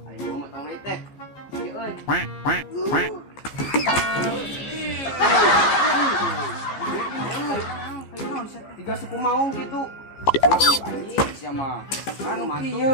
aing mau motong deui teh. Ieu euy. Tiga suku maung gitu. Anjing sia mah. Anu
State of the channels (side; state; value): right; late; 15 ms